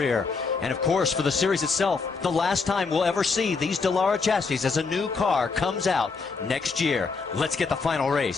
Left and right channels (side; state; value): right; quieter; 4.6 dB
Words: And of course, for the series itself, the last time we'll ever see these Dallara chassis as a new car comes out next year. Let's get the final